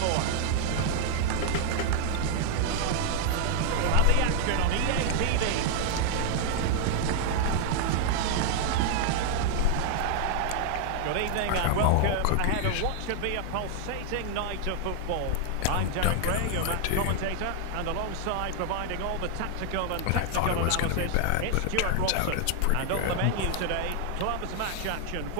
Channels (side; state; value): both; different; correlation 0.00